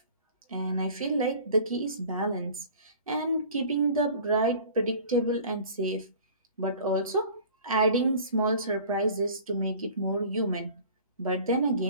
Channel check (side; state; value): both; inverted; correlation -0.45